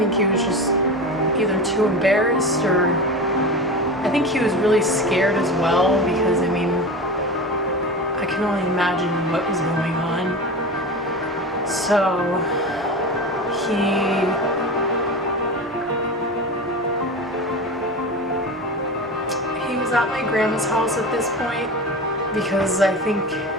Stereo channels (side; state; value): both; normal; correlation 0.28